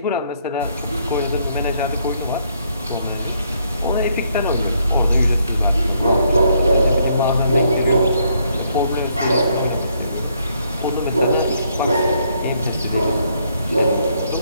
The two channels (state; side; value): inverted; both; correlation -0.71